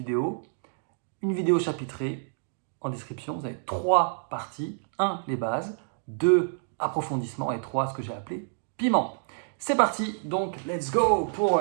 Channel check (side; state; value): left; silent; digital silence